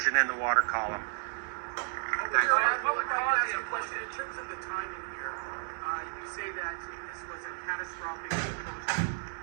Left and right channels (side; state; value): left; silent; 56 dB below the other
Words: in the water column. What would cause the implosion? In terms of the timing here, you say that this was a catastrophic implosion.